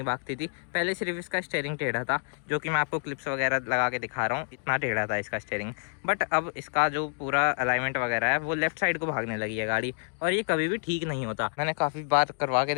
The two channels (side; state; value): right; silent; digital silence